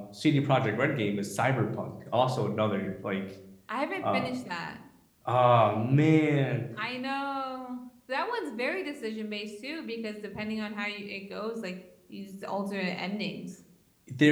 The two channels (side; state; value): both; identical; correlation 1.00